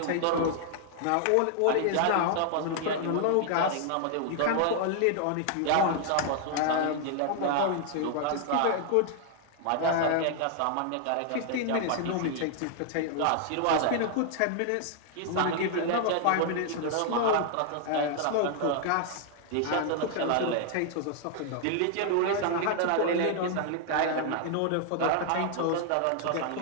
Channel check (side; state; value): both; different; correlation 0.00